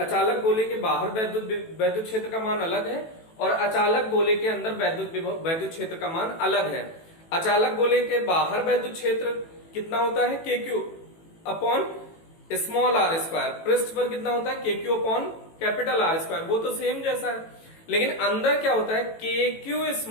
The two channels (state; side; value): late; right; 18 ms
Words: गोले के बाहर वैद्युत क्षेत्र का मान अलग है और अचालक गोले के अंदर वैद्युत क्षेत्र का मान अलग है। अचालक गोले के बाहर वैद्युत क्षेत्र कितना होता है, KQ upon small r square. पृष्ठ पर कितना होता है, KQ upon capital R square. वो तो सेम जैसा है, लेकिन अंदर क्या होता है, KQ